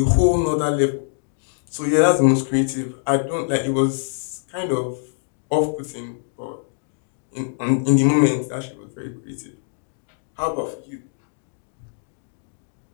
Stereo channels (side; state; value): right; silent; digital silence